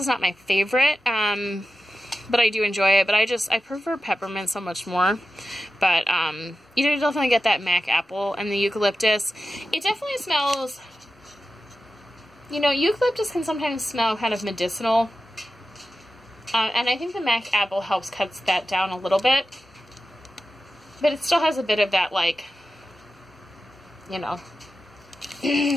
not my favorite, but I do enjoy it. But I prefer peppermint so much more. But you definitely get that mac apple and the eucalyptus. It definitely smells, eucalyptus can sometimes smell kind of medicinal. And I think the mac apple cuts that down a little bit. But it still has a bit of that, like, I don't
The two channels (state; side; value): normal; both; correlation 0.92